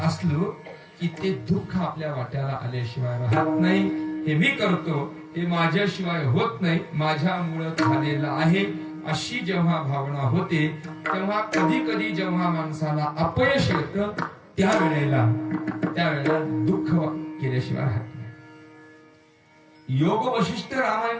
असलो की ते दुःख आपल्या वाट्याला आल्याशिवाय राहत नाही. हे मी करतो, हे माझ्याशिवाय होत नाही, माझ्यामुळे झालेलं आहे, अशी जेव्हा भावना होते तेव्हा कधी कधी जेव्हा माणसाला अपयश येतं त्यावेळेला दुःख केल्याशिवाय राहत नाही. योग वशिष्ठ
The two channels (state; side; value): identical; both; correlation 1.00